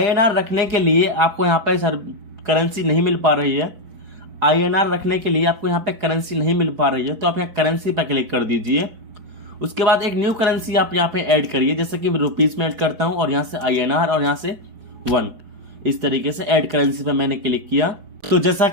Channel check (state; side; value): late; left; 4.6 ms